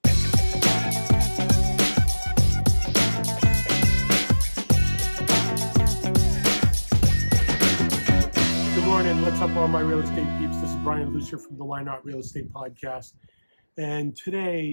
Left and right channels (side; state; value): both; inverted; correlation -1.00